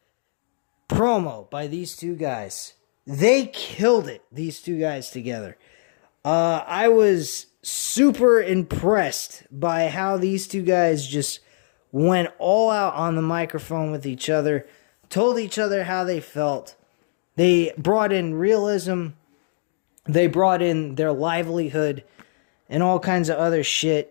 promo by these two guys. They killed it, these two guys together. I was super impressed by how these two guys just went all out on the microphone with each other, told each other how they felt. They brought in realism. They brought in their livelihood and all kinds of other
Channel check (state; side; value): silent; right; digital silence